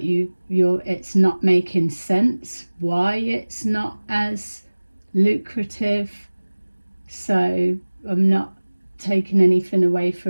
it's not making sense why it's not as lucrative. So I'm not taking anything away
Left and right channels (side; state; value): both; inverted; correlation -1.00